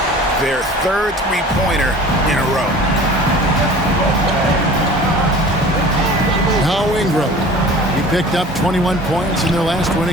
Their third three-pointer in a row. Now Ingram. He picked up 21 points in their last win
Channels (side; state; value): both; normal; correlation 0.43